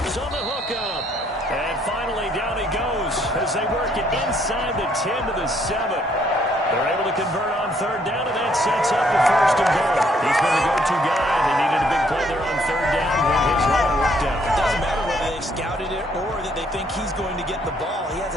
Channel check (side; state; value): both; normal; correlation 0.67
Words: on the hookup. And finally, down he goes as they work it inside the 10 to the 7. They're able to convert on 3rd down, and that sets up the 1st and goal. He's been the go-to guy. They needed a big play there on 3rd down when his run worked out. It doesn't matter whether they've scouted it or that they think he's going to get the ball. He has